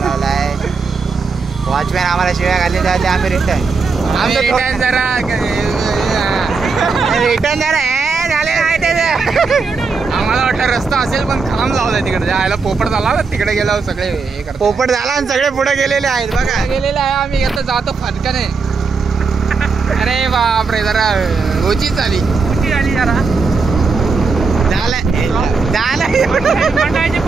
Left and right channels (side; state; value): left; quieter; 4.7 dB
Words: वॉचमॅन आम्हाला शिव्या घाली जाते. आम्ही रिटर्न रिटर्न झाले नाही त्याचं. आम्हाला वाटतं रस्ता असेल पण खांब लावलाय तिकडे जायला. पोपट झाला तिकडे गेलो सगळे हे करतो. पोपट झाला आणि सगळे पुढे गेलेले आहेत बघा. गेलेले आहे. आम्ही आता जातो फटकाने. अरे बापरे जरा ओची झाली जरा